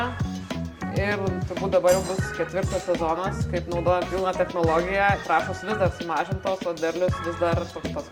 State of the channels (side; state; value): both; identical; correlation 1.00